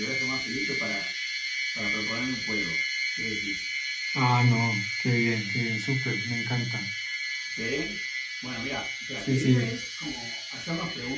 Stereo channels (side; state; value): both; identical; correlation 1.00